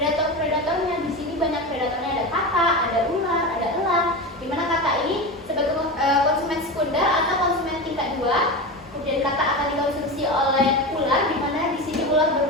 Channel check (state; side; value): normal; both; correlation 0.23